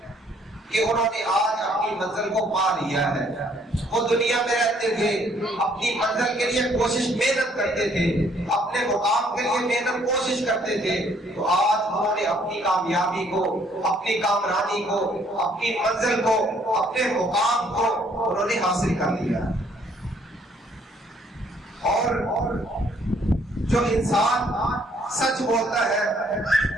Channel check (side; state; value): both; normal; correlation 0.64